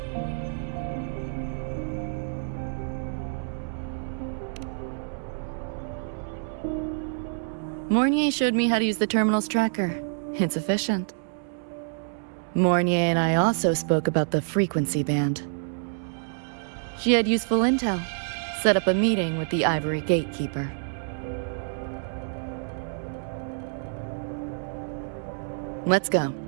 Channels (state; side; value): silent; left; 60 dB below the other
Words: Mornier showed me how to use the terminal's tracker. It's efficient. Mornier and I also spoke about the frequency band. She had useful intel. Set up a meeting with the Ivory Gatekeeper. Let's go.